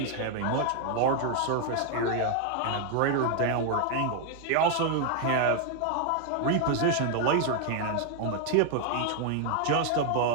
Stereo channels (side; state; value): both; different; correlation 0.00